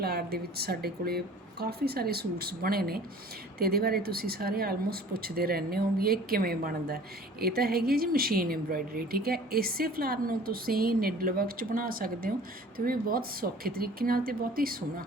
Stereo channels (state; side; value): normal; both; correlation 0.47